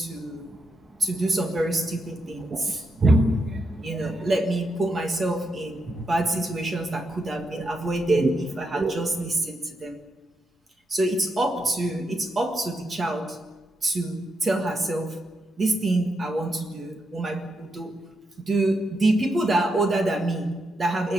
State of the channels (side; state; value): both; normal; correlation 0.83